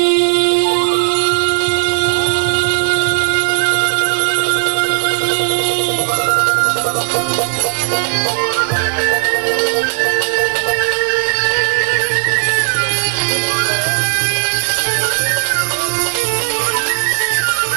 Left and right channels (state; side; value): silent; left; digital silence